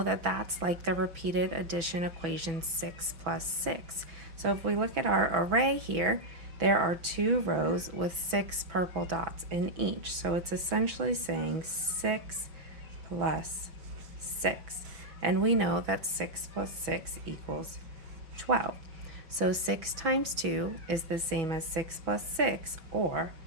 that that's like the repeated addition equation 6 plus 6. So if we look at our array here, there are 2 rows with 6 purple dots in each. So it's essentially saying 6 plus 6. And we know that 6 plus 6 equals 12. So 6 times 2 is the same as 6 plus 6, or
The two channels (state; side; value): late; left; 5.7 ms